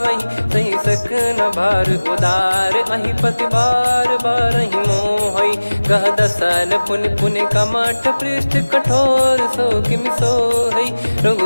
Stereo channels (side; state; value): both; inverted; correlation -1.00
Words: सही सकन भार उदार अहि पति बार बारहि मोहै। गह दसन पुन पुन कमठ पृष्ठ कठोर सो किमि सोहै।